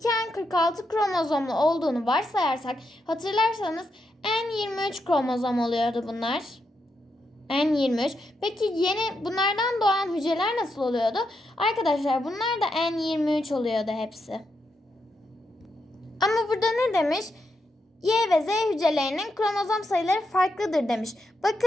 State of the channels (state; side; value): normal; both; correlation 0.83